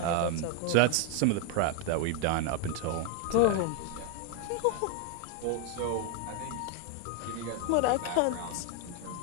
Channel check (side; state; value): both; different; correlation 0.01